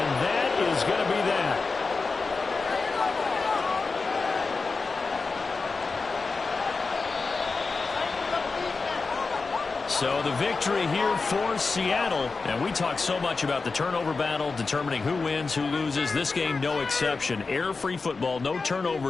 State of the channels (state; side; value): quieter; right; 4.2 dB